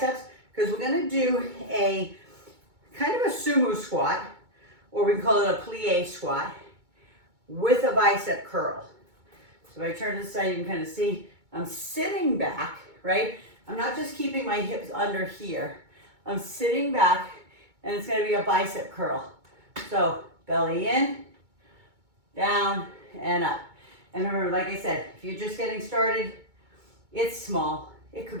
because we're going to do a kind of a sumo squat, or we can call it a plie squat, with a bicep curl. So if I turn to the side, you can kind of see I'm sitting back, right? I'm not just keeping my hips under here. I'm sitting back, and it's going to be a bicep curl. So belly in, down, and up. And remember, like I said, if you're just getting started, it's small. It could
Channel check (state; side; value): late; left; 2.2 ms